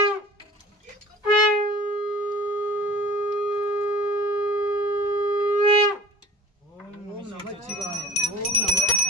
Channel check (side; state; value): both; normal; correlation 0.42